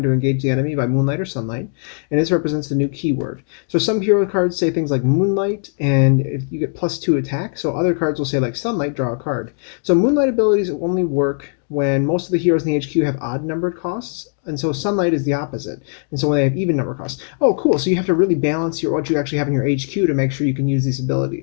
to engage the enemy by moonlight or sunlight, and this represents the new keyword. So some hero cards say things like Moonlight, and if you get +2 attack, so other cards will say like Sunlight, draw a card. So Moonlight abilities only work when most of the heroes in the HQ have odd numbered costs, and so Sunlight is the opposite. And so when they have even number costs. Oh, cool. So you have to really balance what you actually have in your HQ to make sure you can use these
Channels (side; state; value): right; silent; 62 dB below the other